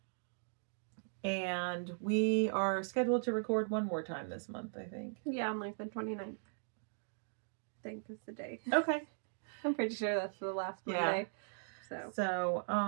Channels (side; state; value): left; silent; digital silence